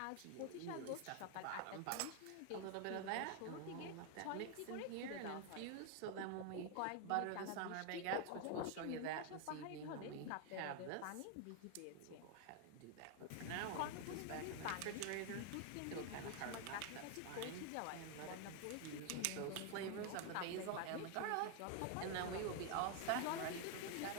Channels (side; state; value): both; different; correlation 0.01